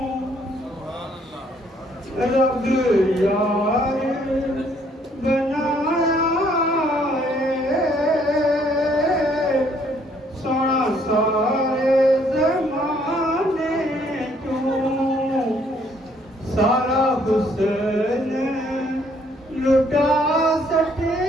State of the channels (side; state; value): both; normal; correlation 0.65